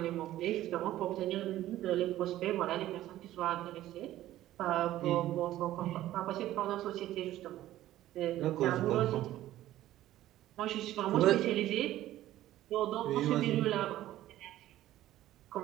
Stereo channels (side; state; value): left; quieter; 14.2 dB